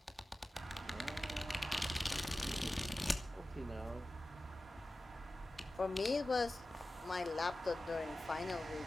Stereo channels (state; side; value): normal; both; correlation 0.95